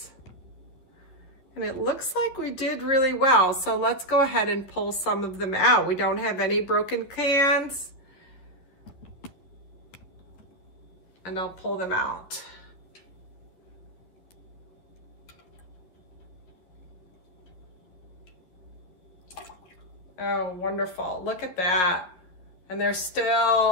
And it looks like we did really well. So let's go ahead and pull some of them out. We don't have any broken cans. And I'll pull them out. Oh, wonderful. Look at that. And they're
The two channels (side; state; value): right; late; 11 ms